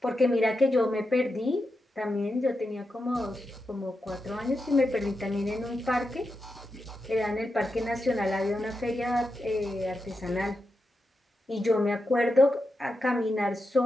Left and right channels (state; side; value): normal; both; correlation 0.88